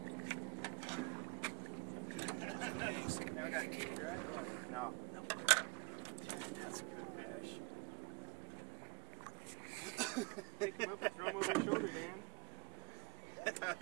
Now I got teeth, right? Or? No. Man, that's a good fish. Pick him up and throw him over your shoulder, man. That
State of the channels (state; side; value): quieter; left; 29.8 dB